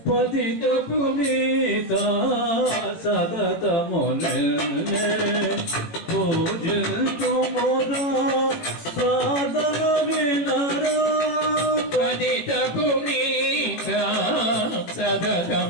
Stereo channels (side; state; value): right; late; 18 ms